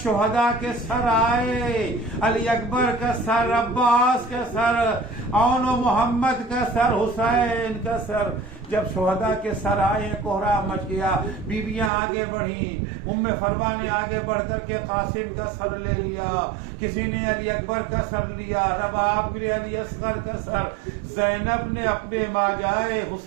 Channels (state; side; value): drops out; left; at 11.9 s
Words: شہداء کے سر آئے. علی اکبر کا سر, عباس کا سر, اون و محمد کا سر, حسین کا سر. جب شہداء کے سر آئے کوہرام مچ گیا. بیویاں آگے بڑھیں. ام فروا نے آگے بڑھ کر کے قاسم کا سر لے لیا, کسی نے علی اکبر کا سر لیا, رباب نے علی اصغر کا سر, زینب نے اپنے ماجائے